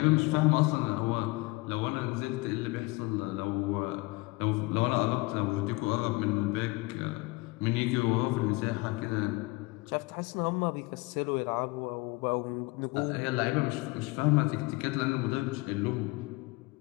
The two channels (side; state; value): right; quieter; 24.1 dB